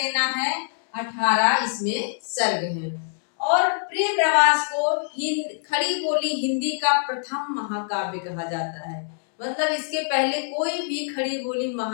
है। 18 इसमें सर्ग हैं। और प्रिय प्रवास को खड़ी बोली हिंदी का प्रथम महाकाव्य कहा जाता है। मतलब इसके पहले कोई भी खड़ी बोली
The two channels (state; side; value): silent; right; digital silence